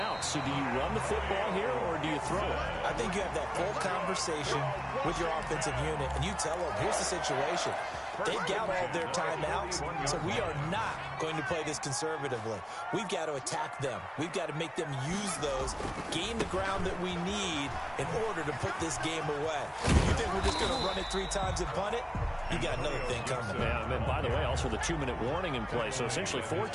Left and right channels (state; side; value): identical; both; correlation 1.00